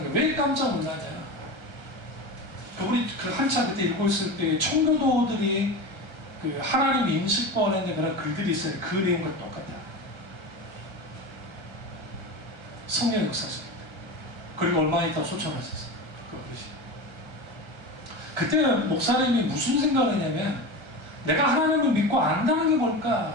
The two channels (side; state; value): left; late; 1.3 ms